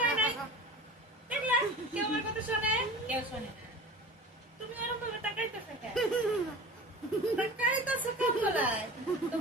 নাই দেখলা কেউ আমার কথা শোনে কেউ শোনে না তুমি এরকম ভাবে তাকাইতেছো কেন তাকাইতেছো কেন বলাই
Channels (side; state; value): both; normal; correlation 0.36